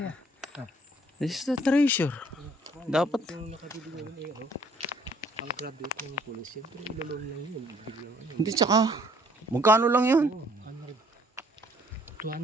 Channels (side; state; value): both; normal; correlation 0.60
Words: This is the treasure. Dapat. Yung nakabili namin eh, ano, ang graduate ng police, siyempre ilolong lang yun. Biglang ano. Hindi, tsaka, magkano lang yun? Oo, 100.